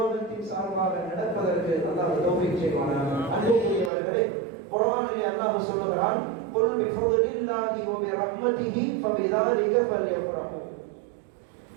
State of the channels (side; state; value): left; drops out; at 3.9 s